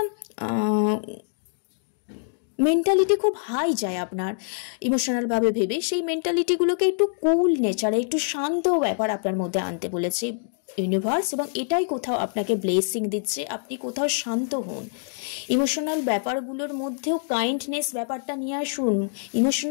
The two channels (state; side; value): silent; right; digital silence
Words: মেন্টালিটি খুব হাই যায় আপনার ইমোশনালভাবে ভেবে। সেই মেন্টালিটিগুলোকে একটু কুল নেচারে, একটু শান্ত ব্যাপার আপনার মধ্যে আনতে বলেছে ইউনিভার্স, এবং এটাই কোথাও আপনাকে ব্লেসিং দিচ্ছে। আপনি কোথাও শান্ত হন, ইমোশনাল ব্যাপারগুলোর মধ্যেও কাইন্ডনেস ব্যাপারটা নিয়ে আসুন।